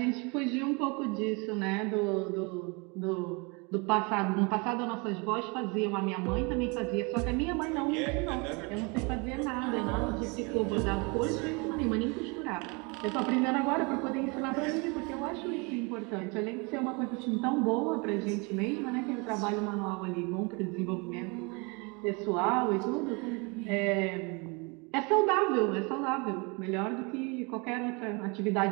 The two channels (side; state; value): left; quieter; 30.0 dB